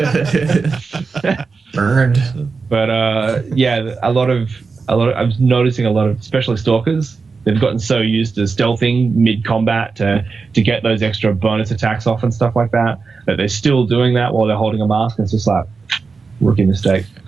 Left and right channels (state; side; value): quieter; left; 4.7 dB